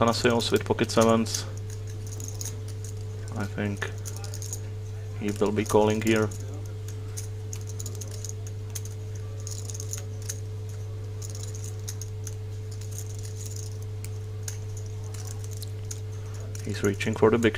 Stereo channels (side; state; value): both; identical; correlation 1.00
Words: with pocket sevens. I think he will be calling here. He's reaching for the